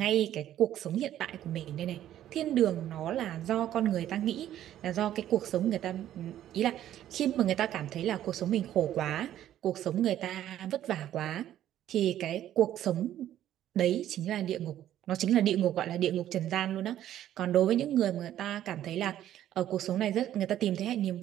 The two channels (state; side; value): quieter; left; 12.0 dB